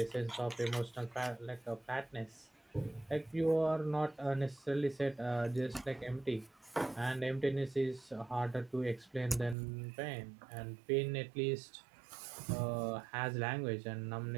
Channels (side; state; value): left; drops out; at 9.6 s